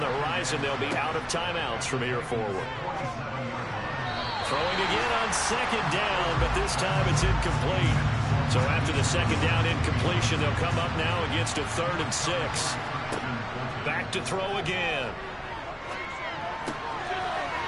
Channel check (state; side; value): identical; both; correlation 1.00